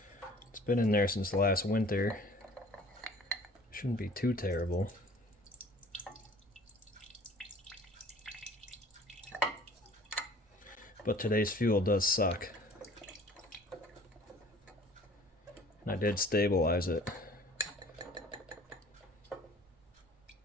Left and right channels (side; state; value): both; normal; correlation 0.50